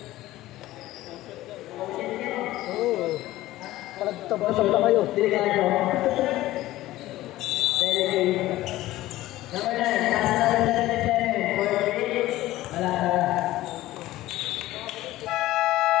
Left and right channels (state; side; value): quieter; right; 16.2 dB